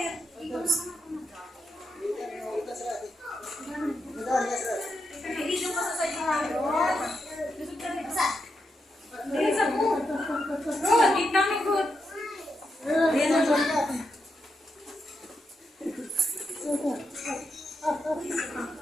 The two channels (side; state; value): both; normal; correlation 0.84